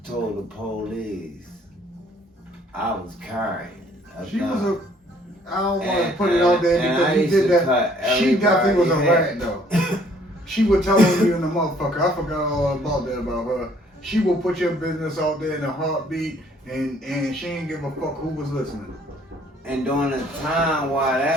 told the police I was carrying a She gun. was a. I don't want to put it out there because he did that. She definitely was a rat though. She would tell on you in the motherfucker. I forgot all about that about her. She will put your business out there in a heartbeat, and she ain't give a fuck who was listening. And during the time while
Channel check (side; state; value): both; normal; correlation 0.61